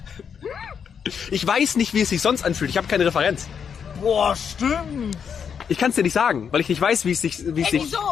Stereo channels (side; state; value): right; quieter; 7.1 dB